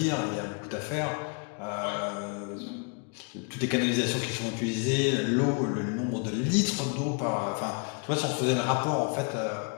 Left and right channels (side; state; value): right; quieter; 36.2 dB